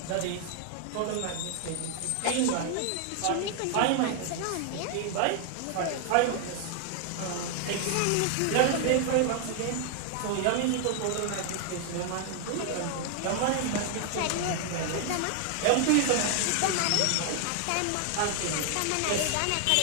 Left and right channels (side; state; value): both; different; correlation 0.00